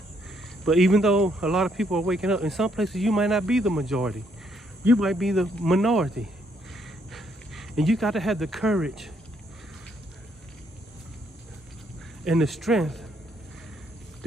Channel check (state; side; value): normal; both; correlation 0.71